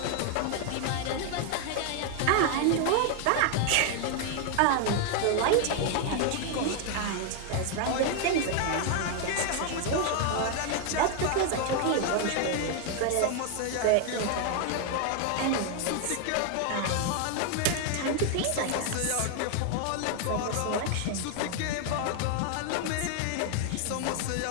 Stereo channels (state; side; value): different; both; correlation 0.00